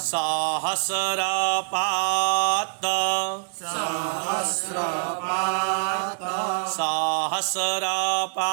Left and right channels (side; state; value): left; silent; digital silence